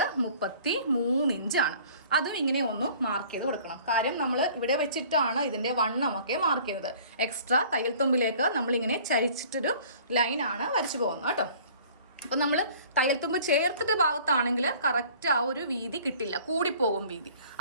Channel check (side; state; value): both; inverted; correlation -0.50